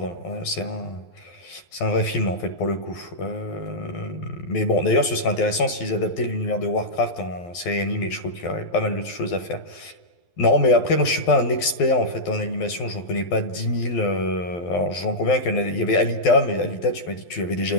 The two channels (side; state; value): right; late; 12 ms